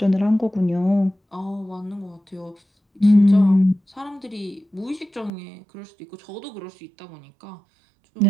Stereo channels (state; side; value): drops out; left; at 5.3 s